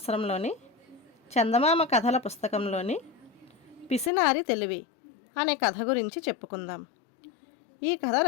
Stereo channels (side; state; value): right; drops out; at 4.1 s